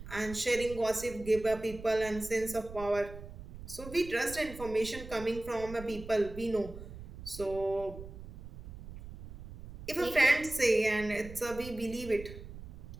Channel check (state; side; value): noise; right; rumble, 13 dB below the sound